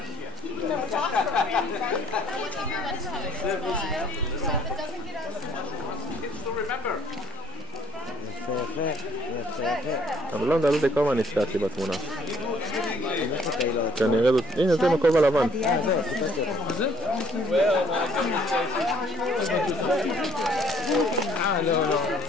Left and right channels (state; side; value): normal; both; correlation 0.59